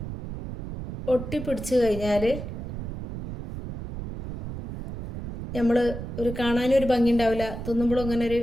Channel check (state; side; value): noise; right; rumble, 8 dB below the sound